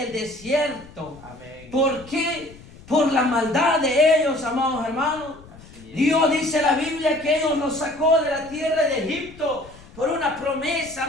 desierto. Amén. ¿Por qué? Por la maldad de ellos, amados hermanos. Dios dice en la Biblia que ellos los sacó de la tierra de Egipto por una promesa,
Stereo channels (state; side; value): noise; left; rumble, 21 dB below the sound